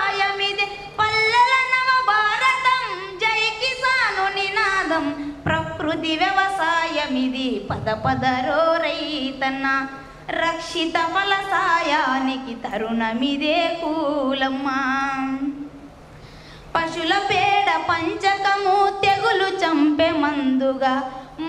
పల్లెల నవ భారతం జై కిసాను నినాదం, ప్రకృతి వ్యవసాయమిది పద పదరో రైతన్న, రక్షిత ఫలసాయానికి తరుణమిదే కూలమ్మ, పశుల పేడ పంచకము తెగులు చంపే మందుగా,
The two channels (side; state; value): both; identical; correlation 1.00